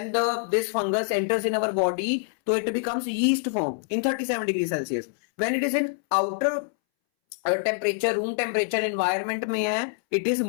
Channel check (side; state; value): right; silent; 61 dB below the other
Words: this fungus enters in our body तो it becomes yeast form in 37 degree Celsius. When it is in outer temperature, room temperature environment में है, it is